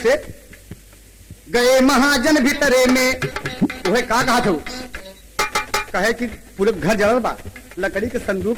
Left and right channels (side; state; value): both; identical; correlation 1.00